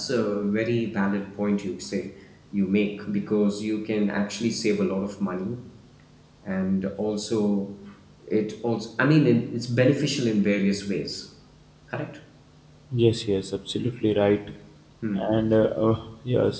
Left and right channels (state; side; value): identical; both; correlation 1.00